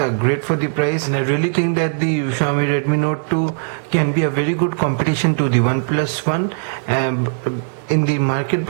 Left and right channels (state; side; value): silent; left; 59 dB below the other